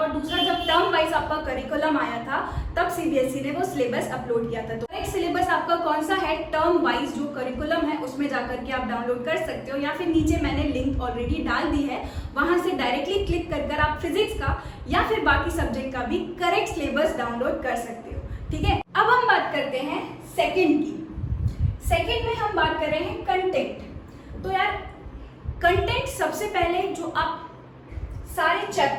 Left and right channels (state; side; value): identical; both; correlation 1.00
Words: दूसरा जब टर्म वाइज आपका करिकुलम आया था तब सीबीएसई ने वो सिलेबस अपलोड किया था। तो करेक्ट सिलेबस आपका कौन सा है, टर्म वाइज जो करिकुलम है उसमें जाकर के आप डाउनलोड कर सकते हो, या फिर नीचे मैंने लिंक ऑलरेडी डाल दी है, वहां से डायरेक्टली क्लिक कर आप फिजिक्स का या फिर बाकी सब्जेक्ट का भी करेक्ट सिलेबस डाउनलोड कर सकते हो, ठीक है। अब हम बात करते हैं सेकंड की। सेकंड में हम बात कर रहे हैं कंटेंट। तो यार कंटेंट सबसे पहले जो आप सारे